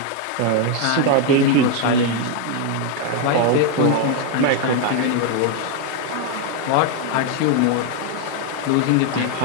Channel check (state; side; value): different; both; correlation 0.01